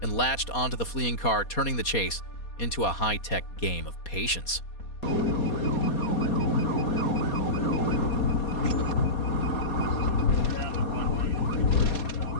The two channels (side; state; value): right; late; 4.2 ms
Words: and latched onto the fleeing car, turning the chase into a high-tech game of patience.